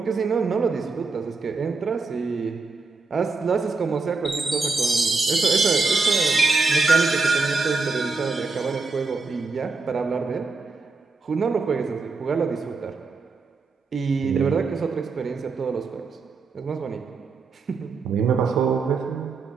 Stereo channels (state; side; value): quieter; left; 4.2 dB